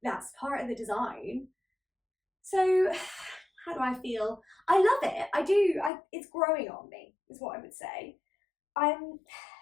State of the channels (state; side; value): drops out; right; at 5.9 s